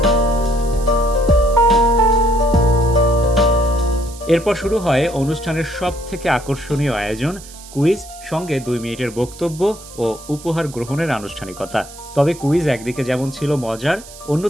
এরপর শুরু হয় অনুষ্ঠানের সব থেকে আকর্ষণীয় আয়োজন কুইজ, সঙ্গে 2 মিনিটের বক্তব্য ও উপহার গ্রহণের আনুষ্ঠানিকতা। তবে কুইজ একদিকে যেমন ছিল মজার,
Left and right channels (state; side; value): noise; right; hiss, 18 dB below the sound